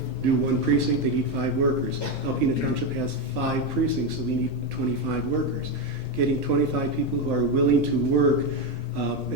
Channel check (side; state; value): both; normal; correlation 0.10